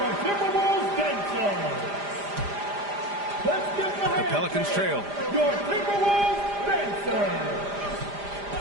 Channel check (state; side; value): late; left; 5.0 ms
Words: Timberwolves dancers. Let's give The Pelicans trail. your Timberwolves dancers.